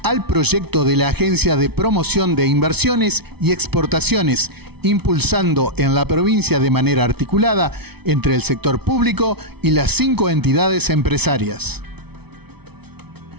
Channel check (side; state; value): left; late; 0.98 ms